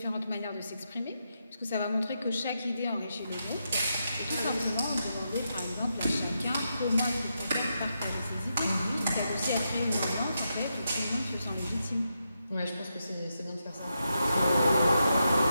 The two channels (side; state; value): both; inverted; correlation -0.85